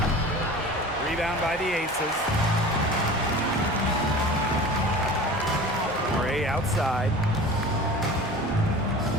Rebound by the Aces. Gray outside.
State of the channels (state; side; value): normal; both; correlation 0.38